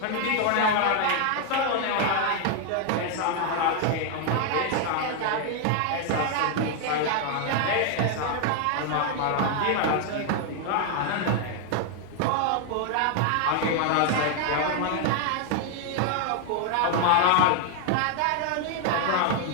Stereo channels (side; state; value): both; different; correlation 0.00